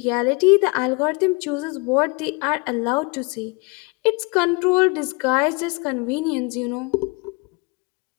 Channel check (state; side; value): quieter; right; 29.7 dB